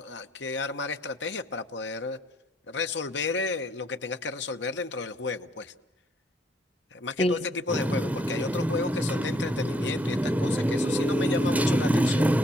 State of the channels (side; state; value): both; normal; correlation 0.68